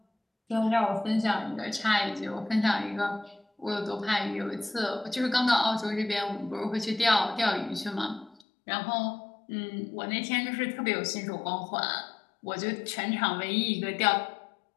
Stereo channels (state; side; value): drops out; right; at 8.3 s